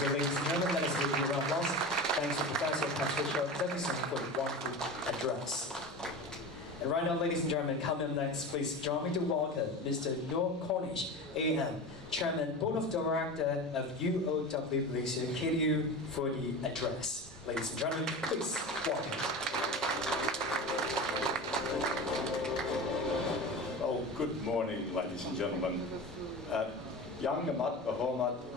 ladies and gentlemen, let us give you a round of applause. Thanks to Professor Patricia Davidson for the wonderful address. And right now, ladies and gentlemen, coming up next, please join me to welcome Mr. Noor Cornish, AM, Chairman, Board of Director of UOW Malaysia, KDU, for the address. Ladies and gentlemen, please welcome. Oh, good morning, ladies and gentlemen. Yang Amat Berhormat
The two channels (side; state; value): both; normal; correlation 0.29